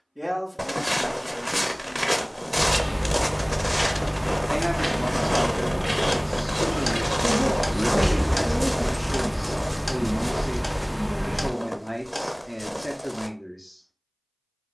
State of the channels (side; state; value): both; identical; correlation 1.00